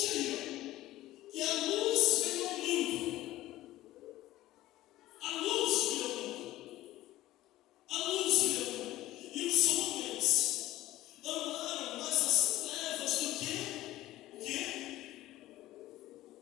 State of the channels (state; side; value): quieter; right; 15.8 dB